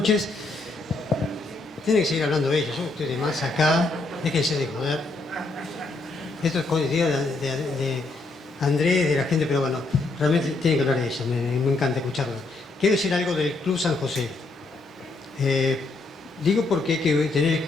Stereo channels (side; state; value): right; quieter; 3.3 dB